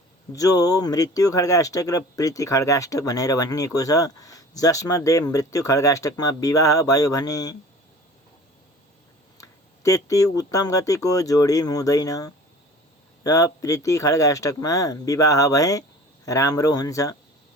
जो मृत्यु खड्गाष्टक र प्रीति खड्गाष्टक भनेर भनिएको छ, जसमध्ये मृत्यु खड्गाष्टकमा विवाह भयो भने त्यति उत्तम गतिको जोडी हुँदैन र प्रीति खड्गाष्टकमा विवाह भए राम्रो हुन्छ।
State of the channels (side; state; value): both; normal; correlation 0.43